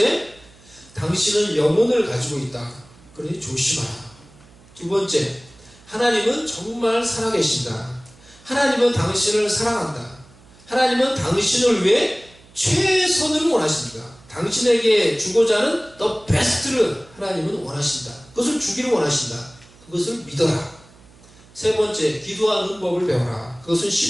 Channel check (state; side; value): noise; right; hum, 26 dB below the sound